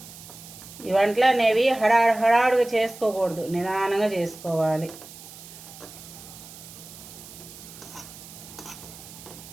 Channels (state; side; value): noise; right; hiss, 16 dB below the sound